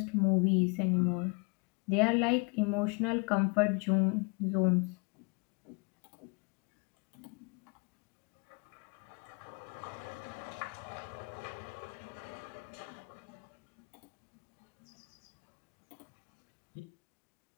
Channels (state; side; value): quieter; right; 33.0 dB